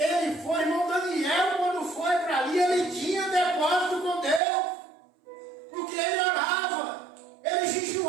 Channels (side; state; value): left; drops out; at 4.4 s